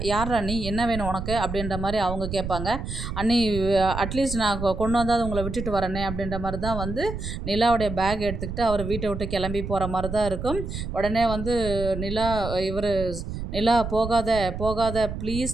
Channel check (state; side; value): noise; right; rumble, 6 dB below the sound